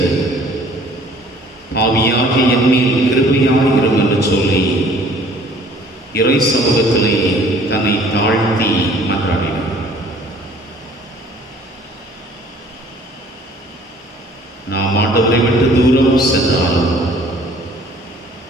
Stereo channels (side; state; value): both; normal; correlation 0.54